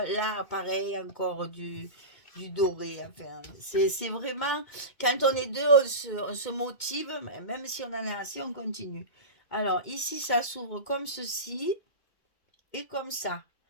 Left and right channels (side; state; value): right; late; 2.2 ms